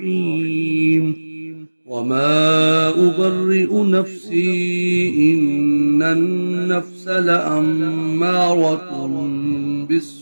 وما أبرئ نفسي إن النفس لأمارة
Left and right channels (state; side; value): inverted; both; correlation -1.00